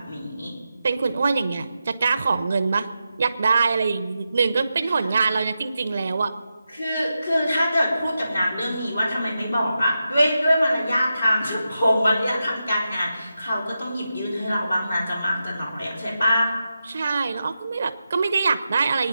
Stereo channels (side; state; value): both; inverted; correlation -0.89